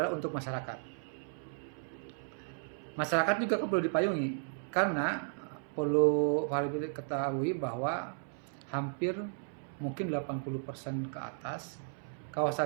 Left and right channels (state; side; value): silent; left; 55 dB below the other